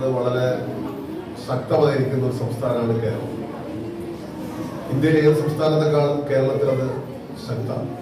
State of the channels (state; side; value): identical; both; correlation 1.00